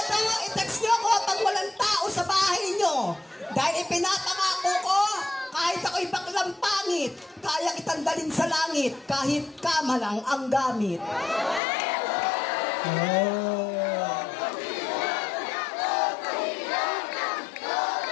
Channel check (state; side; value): drops out; right; at 11.6 s